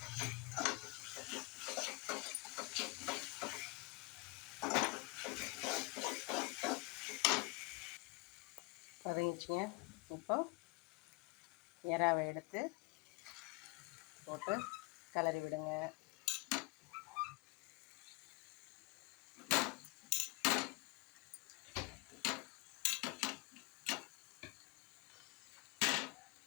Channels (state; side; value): quieter; right; 26.8 dB